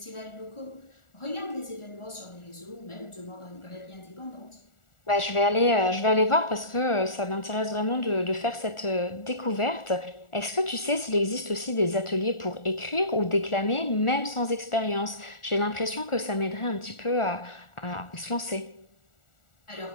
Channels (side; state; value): right; late; 1.4 ms